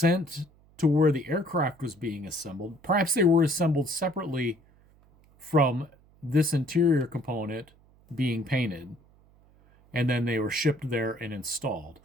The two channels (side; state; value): right; noise; hum, 29 dB below the sound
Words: to where the aircraft was being assembled. Perhaps they were assembled separately from this interior component being painted, and then they were shipped there and installed.